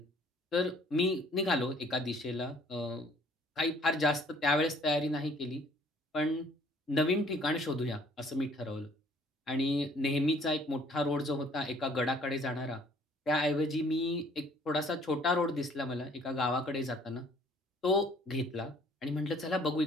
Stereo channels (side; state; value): both; normal; correlation 0.58